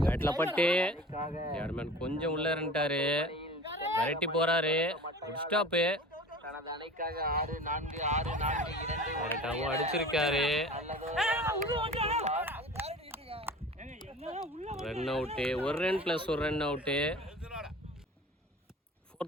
பேட்ல பட்டு தேர்ட்மேன் கொஞ்சம் உள்ள இருந்துட்டாரு. விரட்டி போறாரு. Good stop. அடிச்சிருக்காரு. Run out. 1 run plus 1 run out.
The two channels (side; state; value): both; normal; correlation 0.39